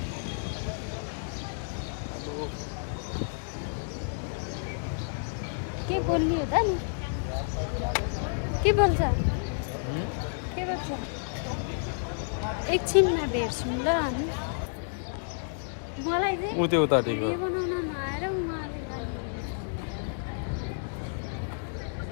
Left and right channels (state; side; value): silent; right; digital silence